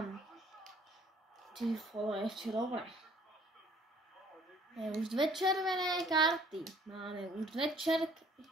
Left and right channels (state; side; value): normal; both; correlation 0.57